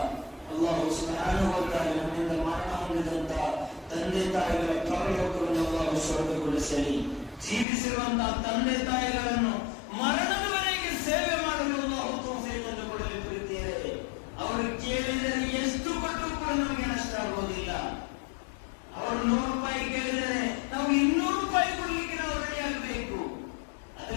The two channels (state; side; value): drops out; right; at 7.7 s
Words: ಅಲ್ಲಾಹು ಸುಬ್ಹಾನಹು ವ ತಆಲಾ ನಮ್ಮಿಂದ ಮರಣ ಹೊಂದಿದಂತ ತಂದೆ ತಾಯಿಗಳ ಪರಲೋಕವನ್ನು ಅಲ್ಲಾಹು ಸ್ವರ್ಗಗೊಳಿಸಲಿ. ಜೀವಿಸಿರುವಂತಹ ತಂದೆ ತಾಯಿಗಳನ್ನು ಮರಣದವರೆಗೆ ಸೇವೆ ಮಾಡಲು ಅಲ್ಲಾಹು ತೌಫೀಕನ್ನು ಕೊಡಲಿ. ಪ್ರೀತಿಯರೇ, ಅವರು ಕೇಳಿದರೆ ಎಷ್ಟು ಕೊಟ್ಟರೂ ಕೂಡ ನಮಗೆ ನಷ್ಟ ಆಗುವುದಿಲ್ಲ. ಅವರು 100 ರೂಪಾಯಿ ಕೇಳಿದರೆ ನಾವು 200 ರೂಪಾಯಿ ಕೊಡ್ಲಿಕ್ಕೆ ನಾವು ರೆಡಿ ಆಗಬೇಕು.